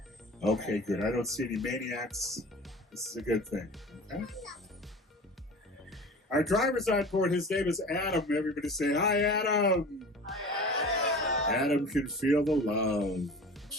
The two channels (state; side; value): normal; both; correlation 0.38